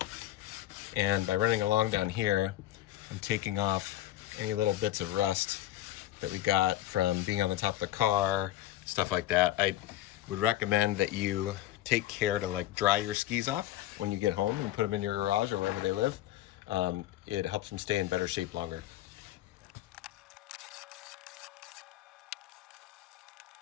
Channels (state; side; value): quieter; right; 14.3 dB